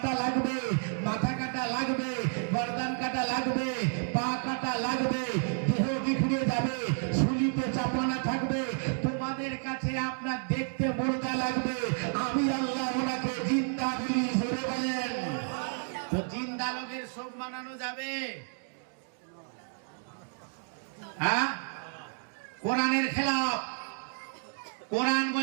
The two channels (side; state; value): left; silent; 57 dB below the other